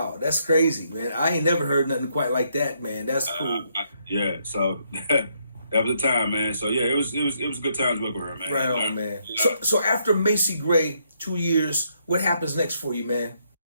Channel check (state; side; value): inverted; both; correlation -0.74